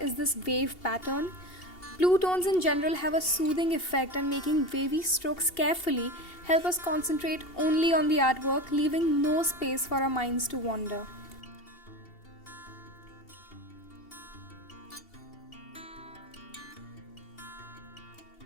this wave pattern. Blue tones in general have a soothing effect, and making wavy strokes carefully help us concentrate only on the artwork, leaving no space for our minds to wander.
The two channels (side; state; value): right; late; 2.8 ms